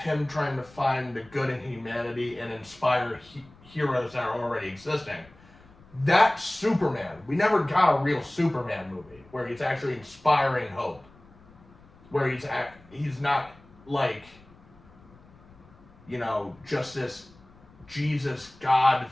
trying to find the good in humanity and inspire heroes that are already existing. That's Superman. We never got a real Superman movie where he's actually inspiring hope. Where he's not like, just this Jesus God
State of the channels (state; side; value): noise; left; rumble, 25 dB below the sound